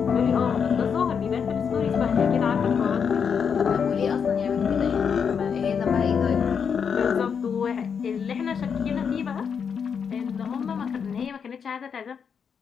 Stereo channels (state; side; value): quieter; right; 6.8 dB